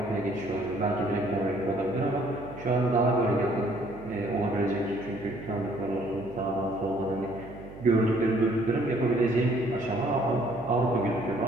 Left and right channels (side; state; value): right; noise; hum, 15 dB below the sound